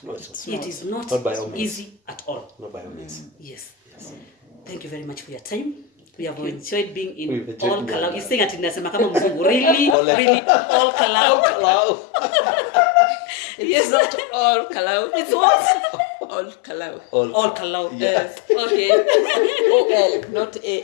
It is not by all means. easy at all. Not by all means. Yes. Thank you very much for your time. We have enjoyed being in We've enjoyed all being Kalau. here. You're saying atinasema kama mzungu. Really, all Kalau. Hello. It's not all Kalau. It's what? All Kalau. All Kalau. Yes. Okay. O-L, not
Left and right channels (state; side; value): drops out; right; at 10.0 s